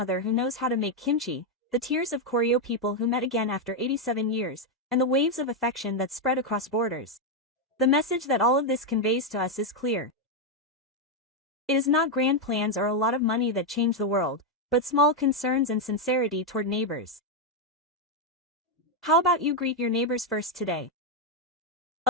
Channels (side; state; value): both; normal; correlation 0.02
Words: who knows how to make kimchi, the tears of Koryo people who met again after 87 years, and the waves of affection that spread across borders. The message that all of this conveys to us is clear. It is not grand plans or a lot of money that change the world, but small concerns and sincerity toward neighbors. How about you greet your neighbors first today?